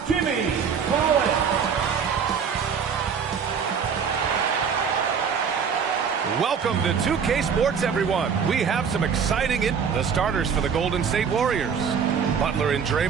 Jimmy Collins. Welcome to 2K Sports, everyone. We have some exciting the starters for the Golden State Warriors. Butler and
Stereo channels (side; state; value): left; quieter; 6.7 dB